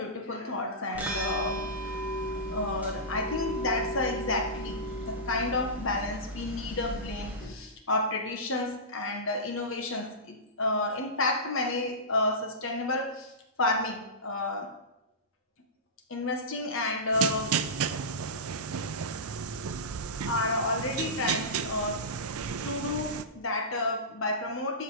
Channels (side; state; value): both; normal; correlation -0.18